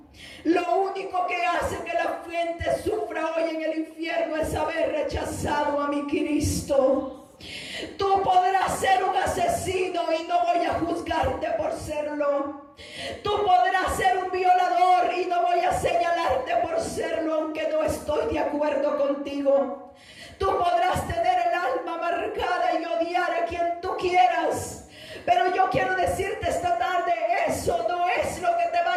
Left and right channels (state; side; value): identical; both; correlation 1.00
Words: lo único que hace que la gente sufra hoy en el infierno es haber rechazado a mi Cristo. Tú podrás ser un asesino y no voy a juzgarte por serlo. Tú podrás ser un violador y no voy a señalarte por serlo, aunque no estoy de acuerdo contigo. Tú podrás tener el alma marcada y odiar a quien tú quieras, pero yo quiero decirte esta tarde, eso no es lo que te va